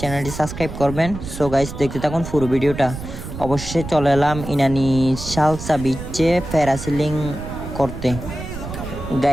চ্যানেলটি সাবস্ক্রাইব করবেন। সো গাইস, দেখতে থাকুন পুরো ভিডিওটা। অবশ্যই চলে এলাম ইনানি শালচা বিচে প্যারাসেলিং করতে।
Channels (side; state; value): right; noise; rumble, 9 dB below the sound